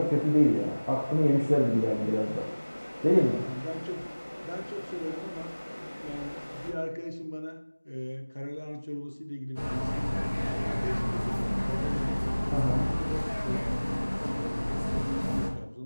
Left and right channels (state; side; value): inverted; both; correlation -1.00